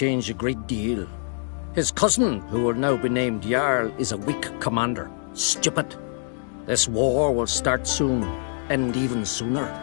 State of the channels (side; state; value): right; silent; digital silence